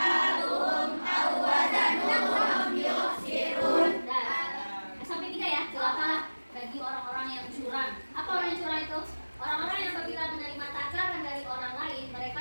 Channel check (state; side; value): inverted; both; correlation -1.00